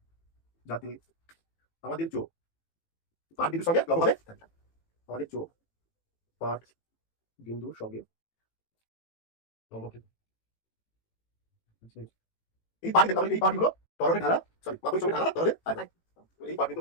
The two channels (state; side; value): late; right; 18 ms